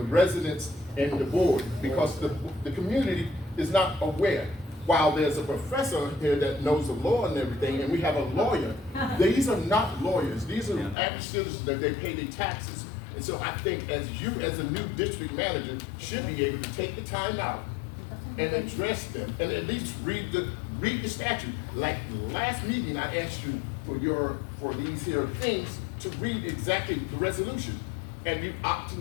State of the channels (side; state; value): right; drops out; at 11.0 s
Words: and the board, because the community is not aware. While there's a professor here that knows the law and everything, and we have a lawyer, these are not lawyers. These are average citizens that they pay their taxes. And so I think as a new district manager, should be able to take the time out and address them, and at least read the statute. Like last meeting, I asked you for these here things to read exactly the resolution, and you